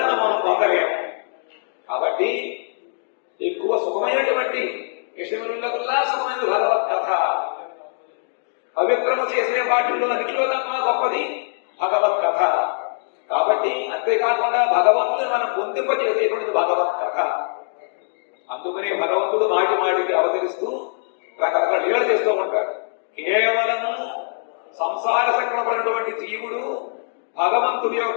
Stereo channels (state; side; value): silent; right; digital silence